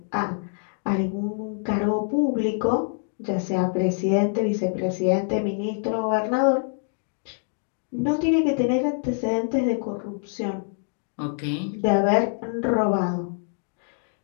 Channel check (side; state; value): right; silent; digital silence